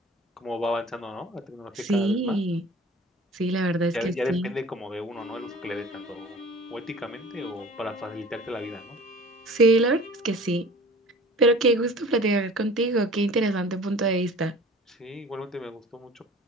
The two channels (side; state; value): both; normal; correlation 0.44